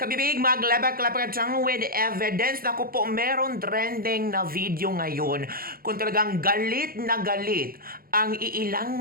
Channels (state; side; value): late; left; 0.42 ms